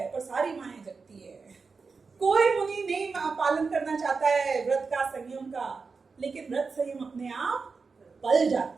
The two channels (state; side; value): quieter; left; 4.7 dB